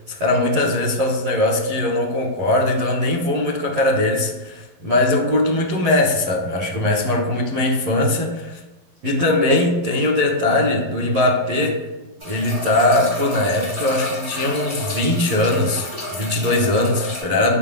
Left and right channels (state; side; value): late; left; 11 ms